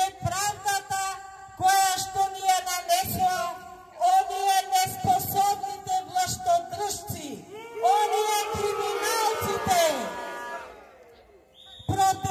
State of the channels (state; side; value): identical; both; correlation 1.00